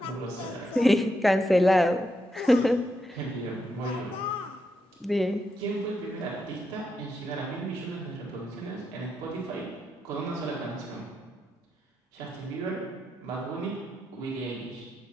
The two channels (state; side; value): normal; both; correlation 0.83